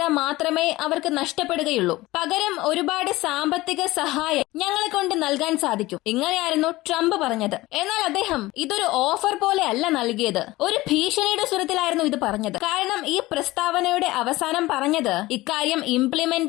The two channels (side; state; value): right; quieter; 18.9 dB